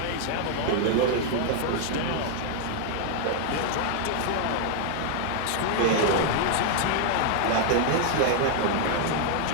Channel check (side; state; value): both; different; correlation 0.00